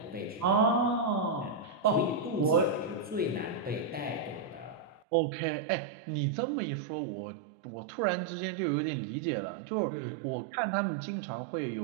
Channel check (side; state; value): left; drops out; at 5.0 s